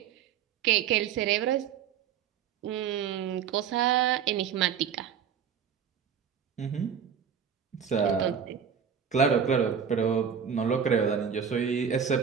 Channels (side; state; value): left; quieter; 7.7 dB